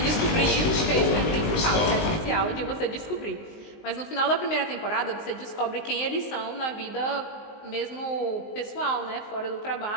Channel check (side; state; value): right; late; 19 ms